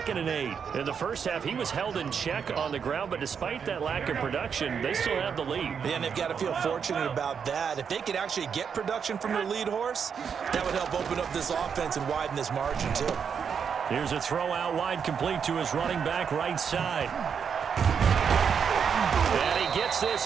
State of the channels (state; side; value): quieter; left; 6.9 dB